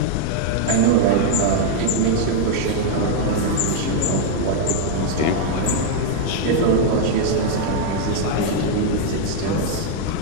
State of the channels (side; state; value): both; different; correlation 0.00